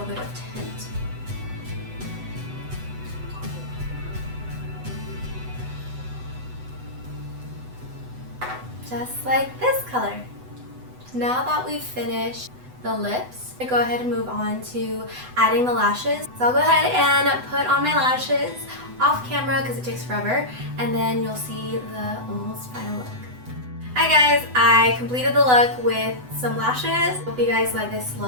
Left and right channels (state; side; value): late; left; 8.0 ms